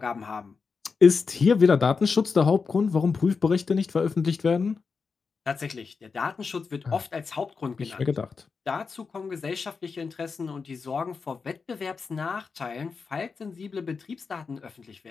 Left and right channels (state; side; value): quieter; right; 5.1 dB